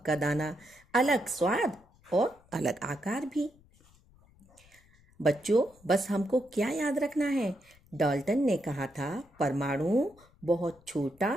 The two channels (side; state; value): left; noise; rumble, 29 dB below the sound